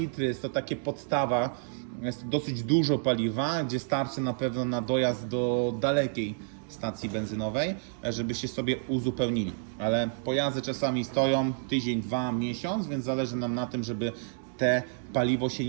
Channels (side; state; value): left; silent; digital silence